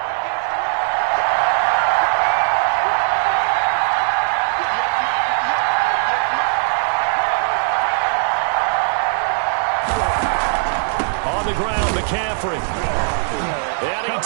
On the ground, McCaffrey. And he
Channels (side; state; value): left; silent; digital silence